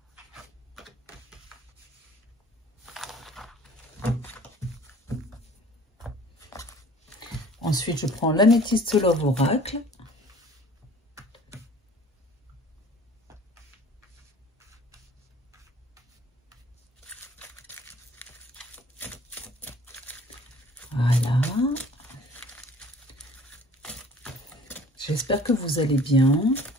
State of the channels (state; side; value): normal; both; correlation 0.50